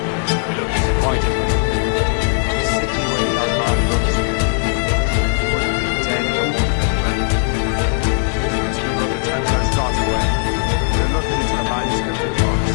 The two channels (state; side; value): silent; right; 63 dB below the other